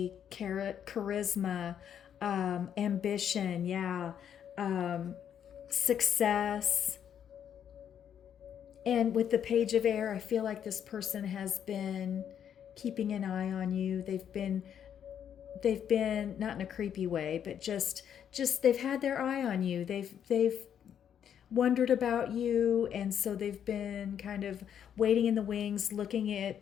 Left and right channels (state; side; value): quieter; right; 8.9 dB